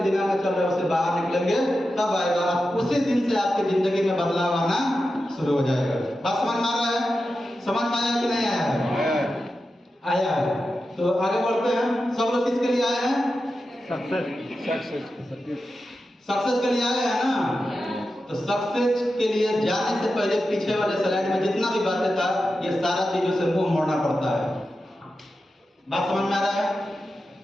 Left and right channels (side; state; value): both; normal; correlation 0.91